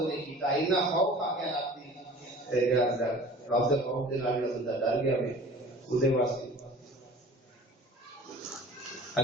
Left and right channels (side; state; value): both; normal; correlation 0.44